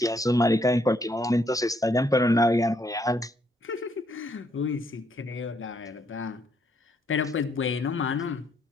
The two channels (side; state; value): both; normal; correlation 0.71